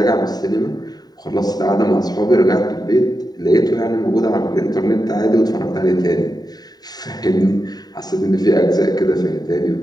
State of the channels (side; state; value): right; late; 0.19 ms